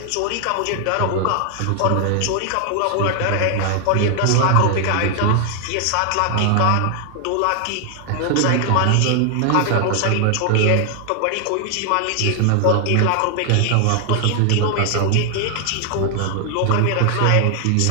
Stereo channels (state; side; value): different; both; correlation 0.00